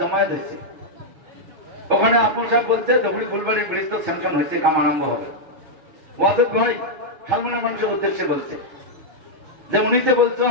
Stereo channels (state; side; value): late; left; 7.2 ms